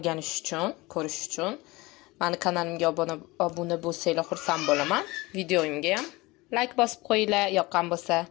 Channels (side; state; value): right; quieter; 22.1 dB